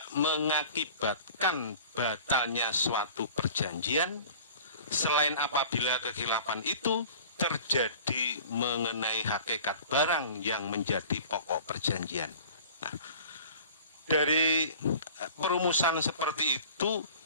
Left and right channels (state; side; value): inverted; both; correlation -0.43